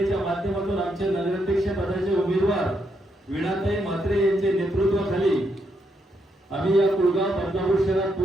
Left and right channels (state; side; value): normal; both; correlation 0.79